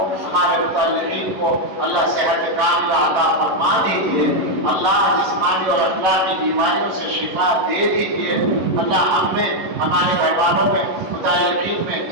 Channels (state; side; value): late; left; 11 ms